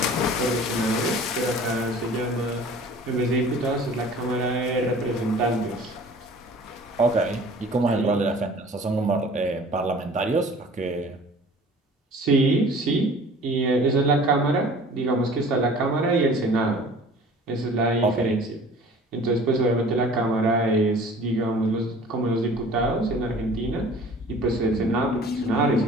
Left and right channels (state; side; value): normal; both; correlation 0.47